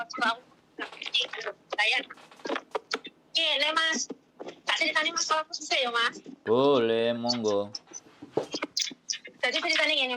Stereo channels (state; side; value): identical; both; correlation 1.00